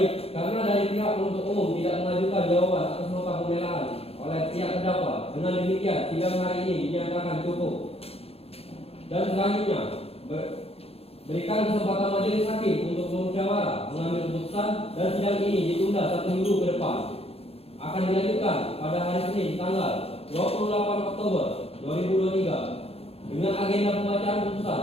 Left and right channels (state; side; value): late; right; 0.29 ms